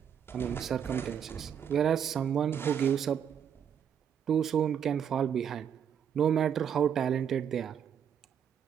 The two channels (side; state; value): left; quieter; 8.3 dB